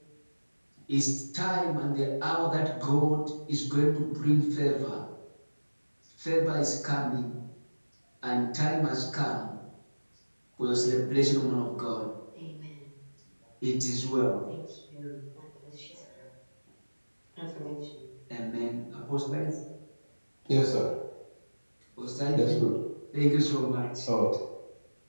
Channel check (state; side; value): inverted; both; correlation -1.00